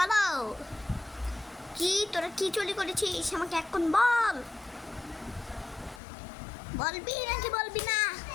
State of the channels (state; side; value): drops out; right; at 6.0 s